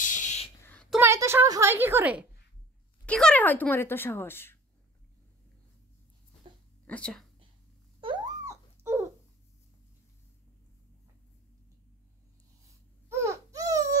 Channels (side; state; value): both; normal; correlation 0.45